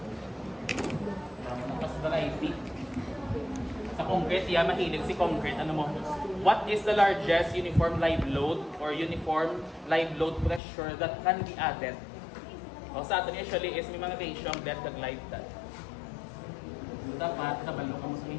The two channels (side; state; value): right; drops out; at 10.6 s